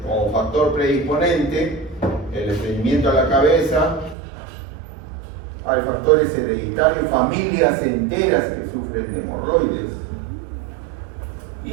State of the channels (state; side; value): drops out; left; at 4.2 s